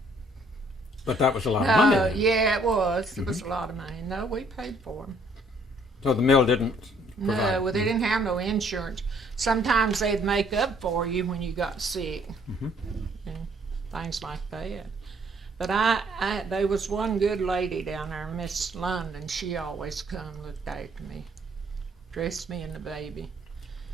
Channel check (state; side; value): normal; both; correlation 0.63